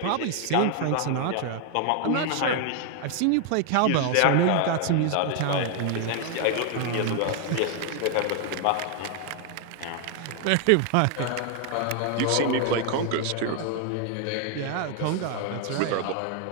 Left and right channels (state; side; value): different; both; correlation 0.00